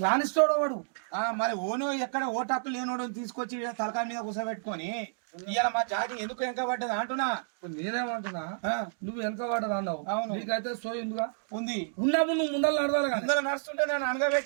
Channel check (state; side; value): silent; left; digital silence